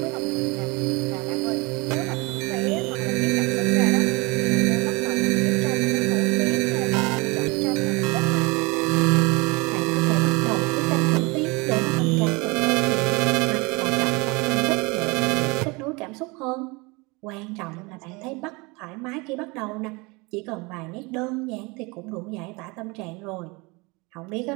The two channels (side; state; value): left; quieter; 26.4 dB